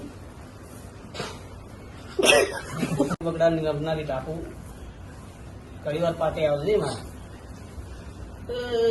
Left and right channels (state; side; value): identical; both; correlation 1.00